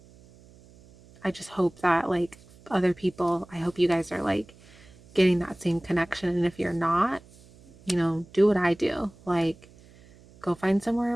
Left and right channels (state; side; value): noise; right; hum, 25 dB below the sound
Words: I just hope that, like, other people, I hope you guys are, like, getting that same connection. And if you're not, do what I do. Like, go find somewhere